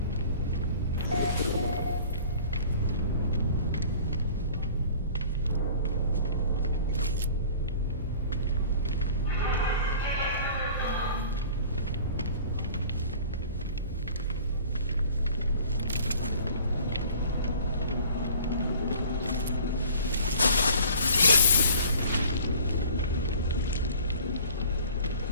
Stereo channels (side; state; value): both; inverted; correlation -0.47